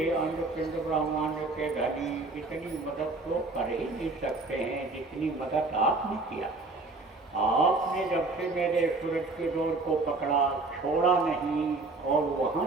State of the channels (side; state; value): left; quieter; 3.4 dB